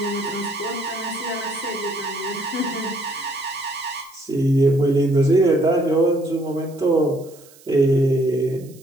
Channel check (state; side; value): noise; right; hiss, 25 dB below the sound